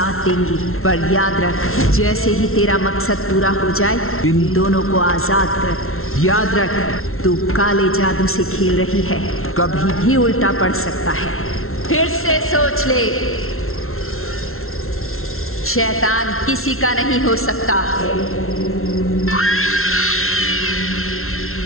देंगी, पर याद रख, जैसे ही तेरा मकसद पूरा हो जाए इन दोनों को आजाद कर। याद रख, तू काले जादू से खेल रही है, कभी भी उल्टा पड़ सकता है। फिर से सोच ले, शैतान किसी का नहीं हो सकता।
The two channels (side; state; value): right; late; 0.62 ms